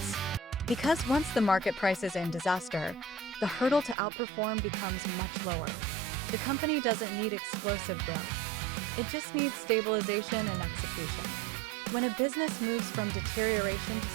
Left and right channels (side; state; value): left; drops out; at 4.0 s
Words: Because once the market price is in disaster, the hurdle to outperform becomes much lower. The company doesn't need explosive growth. It just needs stabilization and execution. When a business moves from deterioration to